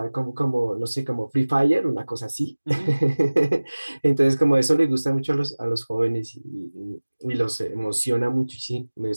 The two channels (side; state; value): both; inverted; correlation -1.00